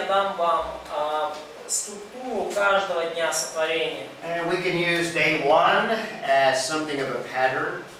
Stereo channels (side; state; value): both; identical; correlation 1.00